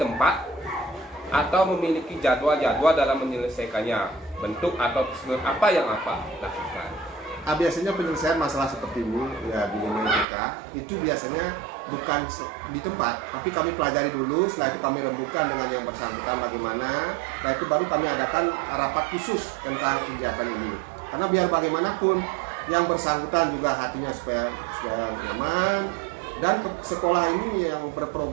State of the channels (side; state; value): left; drops out; at 10.2 s